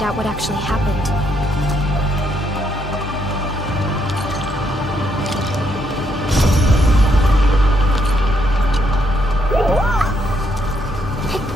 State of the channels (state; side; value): normal; both; correlation 0.75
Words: out what actually happened.